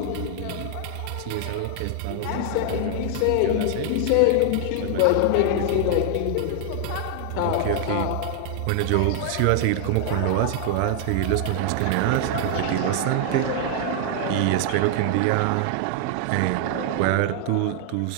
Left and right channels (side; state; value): both; different; correlation 0.00